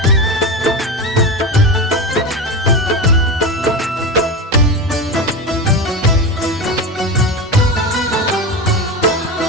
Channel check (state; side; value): normal; both; correlation 0.21